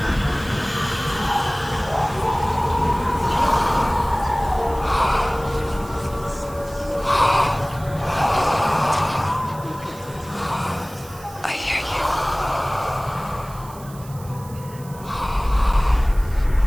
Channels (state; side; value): noise; right; hiss, 20 dB below the sound